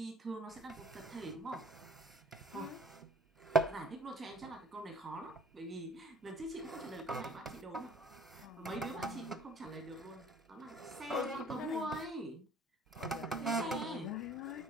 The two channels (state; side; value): normal; both; correlation 0.52